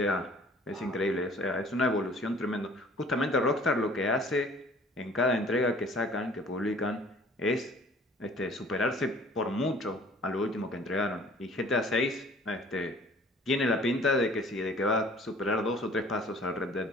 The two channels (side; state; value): both; normal; correlation 0.51